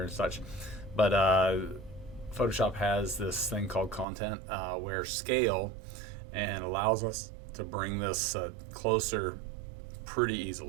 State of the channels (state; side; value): drops out; left; at 4.0 s